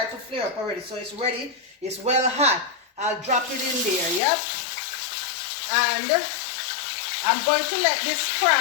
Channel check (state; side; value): drops out; right; at 4.2 s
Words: to flare up already. So it's ready. It's well hot. I'll drop it in there. Yep. And I'm going to let this